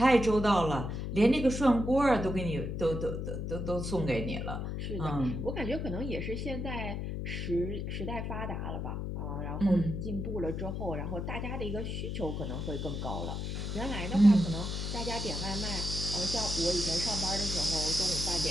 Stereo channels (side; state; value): left; noise; hum, 3 dB below the sound